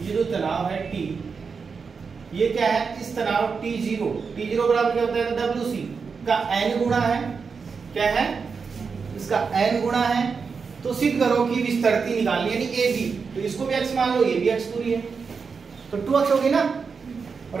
ये जो तनाव है T, ये क्या है? इस तनाव T0 बराबर क्या होता है? WC का n गुणा है, क्या है? इसका n गुणा है, तो सिद्ध करो कि विस्तृति निकालनी यानी AB, तो इसको भी x मान लो, ये भी x दूरी है, तो 2x होगी ना, और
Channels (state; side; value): quieter; left; 5.4 dB